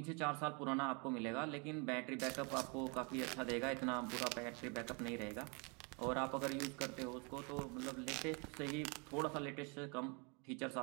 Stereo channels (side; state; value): left; quieter; 32.4 dB